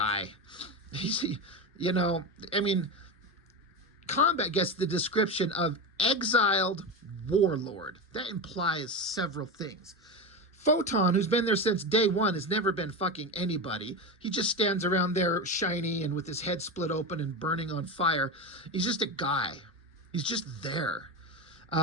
You know, I mean, Combat gets the description of exiled warlord. That implies several things. Photon, who's been there since day one, has never been fucking anybody. He just stands around there shiny and with his head split open and burning on fire. He's just a guy. He's just there.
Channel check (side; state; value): both; normal; correlation 0.19